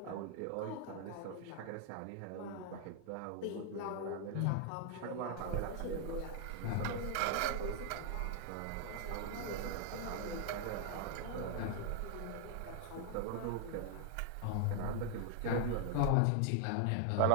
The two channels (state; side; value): different; both; correlation 0.00